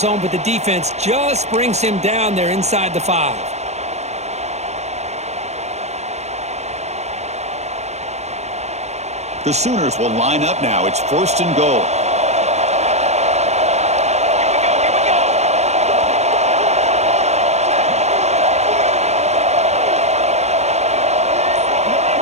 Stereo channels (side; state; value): left; late; 0.32 ms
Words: but the defense just brings him down there inside the 5. The Sooners will line up now. It's 1st and goal.